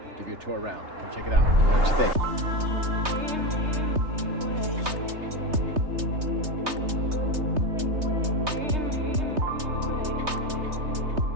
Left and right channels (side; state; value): left; late; 3.3 ms